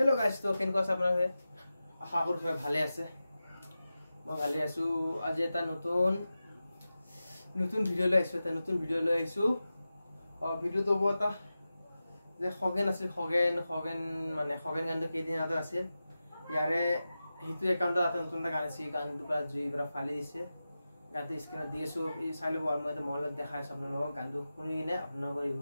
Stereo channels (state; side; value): inverted; both; correlation -0.94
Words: तो কেনেকুৱা আছে আপোনালোকে আশা কৰো সবাই ভালে আছে মই ভালে আছো আজি এটা নতুন ভিডিও লৈ আহিছো ভিডিওটো বটা যে খগেন আছিল খগেন মানে খগেন গানটো কেইদিন আগতে আছিল ইয়াৰে হিটো একাউন্টত এটা নতুন গান আছে গানটো পুৰা জুই পুৰা ফালি দিছে গানটো স্ক্ৰিনত দি আছো এই চাই লব আৰু মই এটা মলত দেখাই আছো আপোনালোকক গানটো শুনি কিনে আপোনালোকৰ